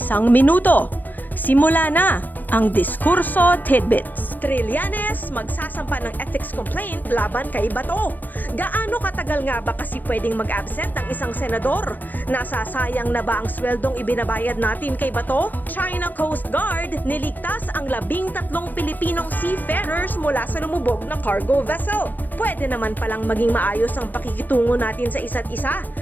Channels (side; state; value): right; late; 0.089 ms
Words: minuto. Simula na ang Diskurso Tidbits. Trillanes magsasampa ng ethics complaint laban kay Bato. Gaano katagal nga ba kasi pwedeng mag-absent ang isang senador? Nasasayang na ba ang sweldong ibinabayad natin kay Bato? China Coast Guard niligtas ang 13 Pilipinong seafarers mula sa lumubog na cargo vessel. Pwede naman palang maging maayos ang pakikitungo natin sa isa't isa.